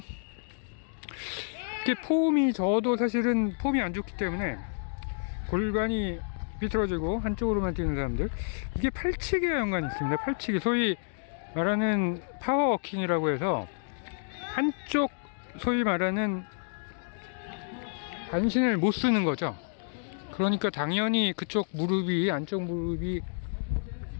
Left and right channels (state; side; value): silent; right; digital silence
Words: 이렇게 폼이, 저도 사실은 폼이 안 좋기 때문에 골반이 비틀어지고 한쪽으로만 뛰는 사람들, 이게 팔치기와 연관이 있습니다. 팔치기, 소위 말하는 파워워킹이라고 해서 한쪽, 소위 말하는 반신을 못 쓰는 거죠. 그러니까 당연히 그쪽 무릎이, 안쪽 무릎이